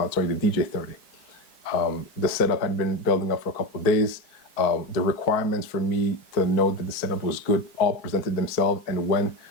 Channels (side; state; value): right; late; 4.5 ms